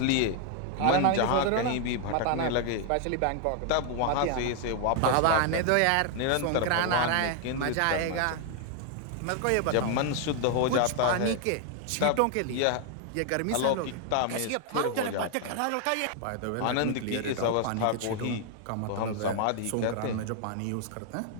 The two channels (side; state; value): both; different; correlation 0.00